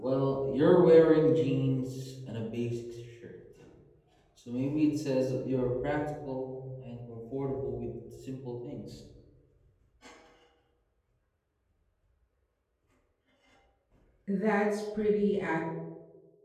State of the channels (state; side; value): identical; both; correlation 1.00